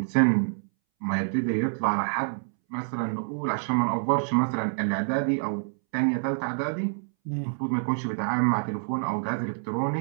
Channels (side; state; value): left; silent; 60 dB below the other